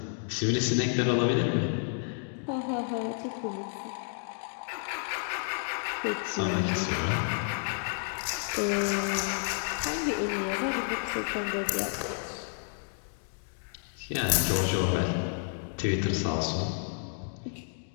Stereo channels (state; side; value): silent; right; digital silence